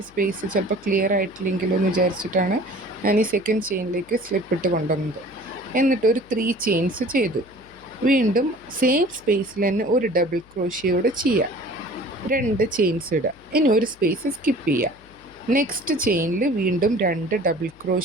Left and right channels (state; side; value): noise; left; hum, 26 dB below the sound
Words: സ്പേസ് ചിലപ്പോൾ ക്ലിയർ ആയിട്ടില്ലെങ്കിലോ എന്ന് വിചാരിച്ചിട്ടാണ് ഞാൻ ഈ സെക്കൻഡ് ചെയിനിലേക്ക് സ്ലിപ്പ് ഇട്ട് കൊണ്ടുവന്നത്. എന്നിട്ട് ഒരു 3 ചെയിൻസ് ചെയ്തു. വീണ്ടും സെയിം സ്പേസിൽ തന്നെ ഒരു ഡബിൾ ക്രോഷ്യോടെ ചെയ്യുക. 2 ചെയിൻസ് ഇടുക. ഇനി ഒരു സ്പേസ് സ്കിപ്പ് ചെയ്യുക. നെക്സ്റ്റ് ചെയിനിൽ വീണ്ടും 2 ഡബിൾ